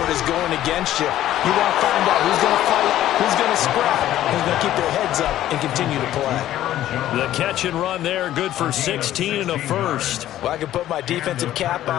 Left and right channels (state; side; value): quieter; right; 13.1 dB